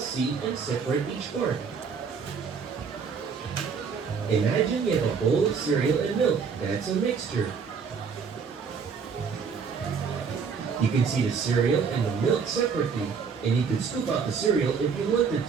and separate each part. Imagine you have a bowl of cereal and milk. That's a mixture. You can see the cereal and the milk separately, and you can scoop out the cereal if you wanted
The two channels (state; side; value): quieter; left; 5.9 dB